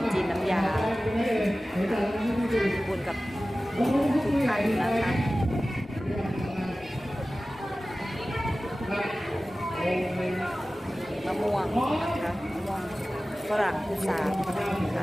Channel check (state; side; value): normal; both; correlation 0.96